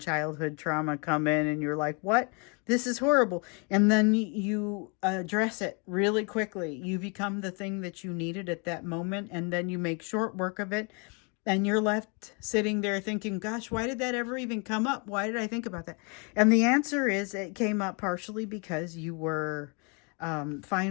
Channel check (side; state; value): right; quieter; 34.2 dB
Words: trauma come in and you're like, what? This is horrible. And then you address it really quickly. You become the thing that you needed at that moment, and then you make short work of it. And you're left sitting there thinking, gosh, why did that ever even come up? Why did I think about that? And the answer is it came up partially because you were